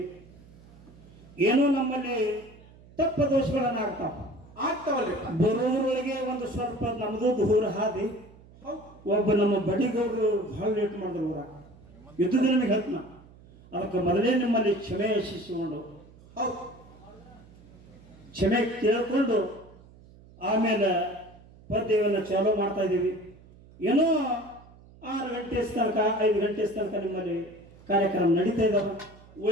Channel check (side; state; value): right; noise; hum, 23 dB below the sound